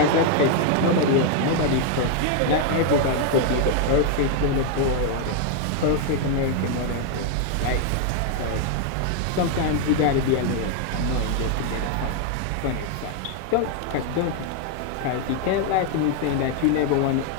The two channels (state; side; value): different; both; correlation 0.00